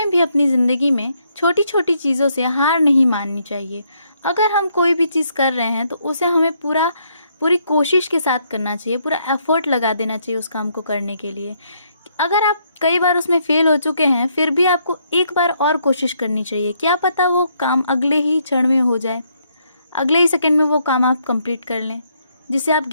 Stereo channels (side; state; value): both; inverted; correlation -0.73